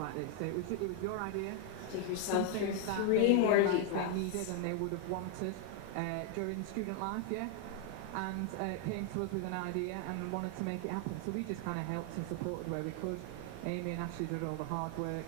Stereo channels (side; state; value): both; different; correlation 0.00